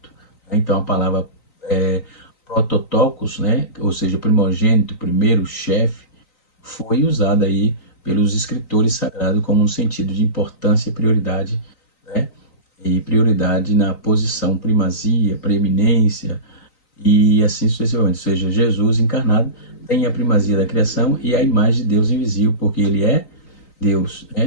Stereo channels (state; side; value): late; right; 3.9 ms